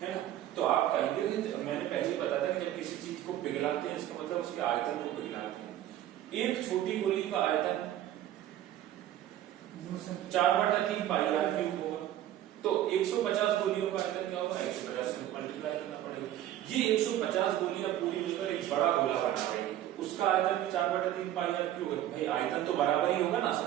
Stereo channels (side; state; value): left; quieter; 12.5 dB